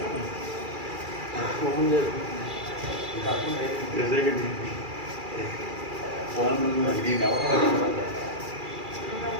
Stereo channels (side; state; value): left; late; 2.3 ms